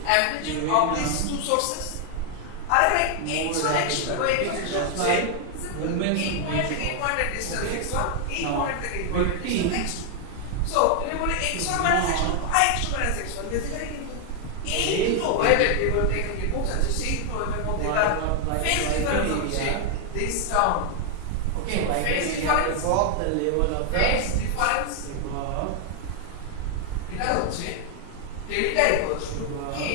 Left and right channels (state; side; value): different; both; correlation 0.00